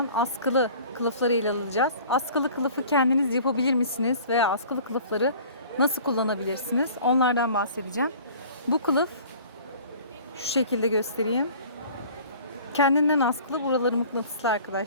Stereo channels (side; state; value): both; inverted; correlation -0.46